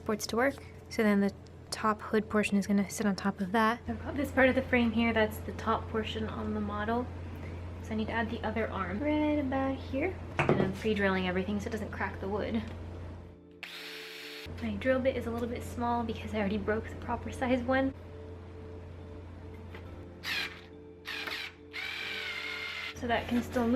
to work. So then the top hood portion is gonna sit on top of that. I've got this part of the frame here, that's the top portion on the model. So I need to add the other arm right about here. And I'm pre-drilling everything so it doesn't crack the wood. My drill bit is a little bit small because I already broke the proper size one. So that can still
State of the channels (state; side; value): identical; both; correlation 1.00